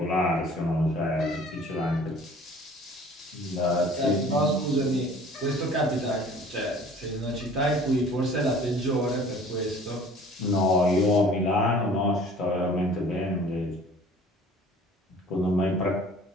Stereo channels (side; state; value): both; normal; correlation 0.49